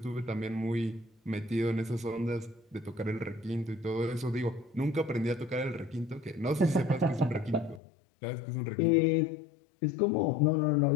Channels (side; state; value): right; drops out; at 7.8 s